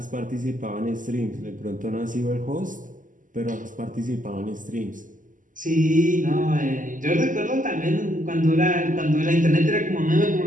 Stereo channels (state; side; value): late; left; 0.38 ms